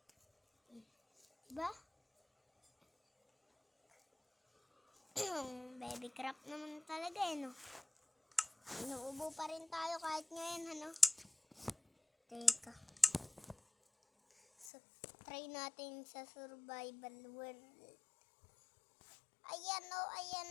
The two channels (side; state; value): right; drops out; at 14.7 s